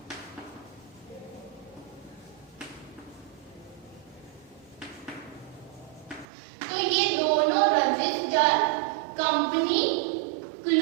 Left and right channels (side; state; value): left; drops out; at 6.2 s